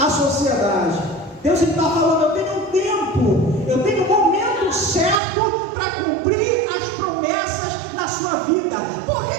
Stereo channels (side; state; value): left; drops out; at 5.2 s